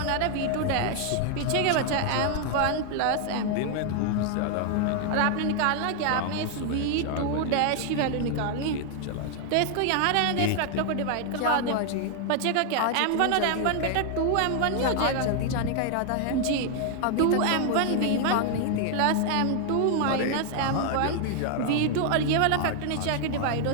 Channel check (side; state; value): both; different; correlation 0.00